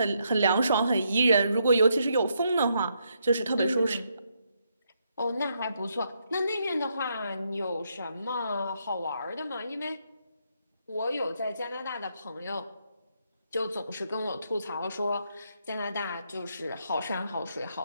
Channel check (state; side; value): inverted; both; correlation -0.77